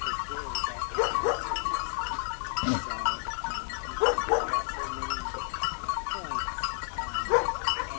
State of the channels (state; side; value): silent; right; 57 dB below the other